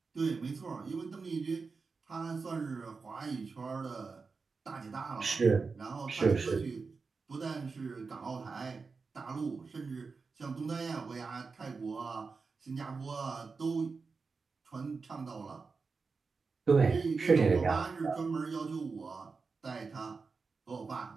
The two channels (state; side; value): quieter; left; 4.6 dB